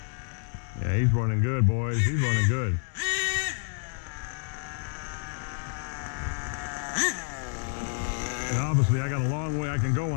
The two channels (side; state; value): right; silent; 59 dB below the other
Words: Yeah, he's running good, boys. He's running good. And obviously, I got a long way I can go